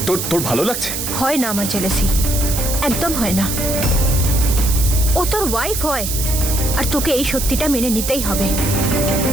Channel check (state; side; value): noise; right; hiss, 4 dB below the sound